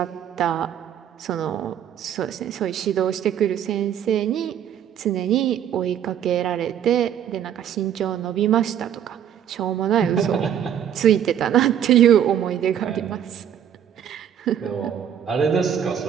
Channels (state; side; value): quieter; left; 9.5 dB